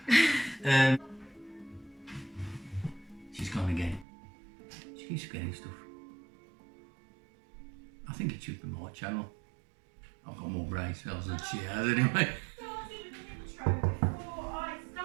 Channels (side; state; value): left; drops out; at 4.0 s